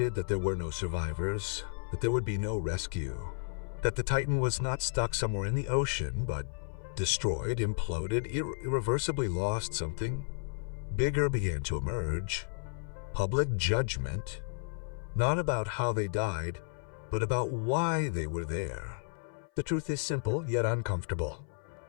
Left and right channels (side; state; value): right; silent; 56 dB below the other